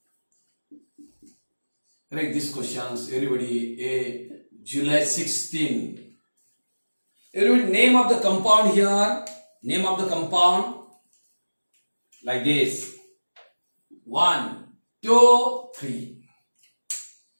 Correct these questions, everybody. July 16. Everybody, name of the compound here. Name of the compound. Like this. 1, 2, 3.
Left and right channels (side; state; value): both; inverted; correlation -1.00